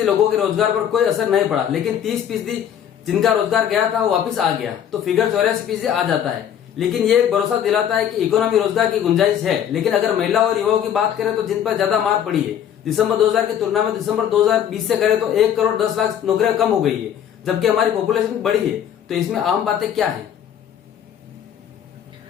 लोगों के रोजगार पर कोई असर नहीं पड़ा, लेकिन 30% जिनका रोजगार गया था वो वापिस आ गया, तो फिगर 84% आ जाता है। लेकिन ये एक भरोसा दिलाता है कि इकोनॉमी रोजगार की गुंजाइश है। लेकिन अगर महिला और युवाओं की बात करें तो जिन पर ज्यादा मार पड़ी है, दिसंबर 2000 की तुलना में दिसंबर 2020 से करें तो 1 करोड़ 10 लाख नौकरियां कम हो गई है, जबकि हमारी पॉपुलेशन बढ़ी है। तो इसमें आम बातें क्या है?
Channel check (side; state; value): right; quieter; 9.5 dB